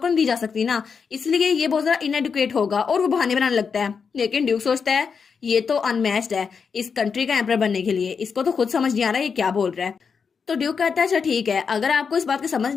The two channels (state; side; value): quieter; right; 5.9 dB